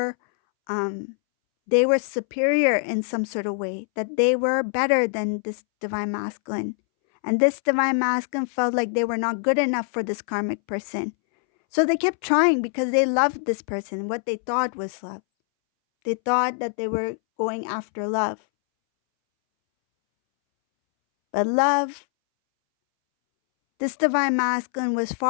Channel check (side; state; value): right; silent; 63 dB below the other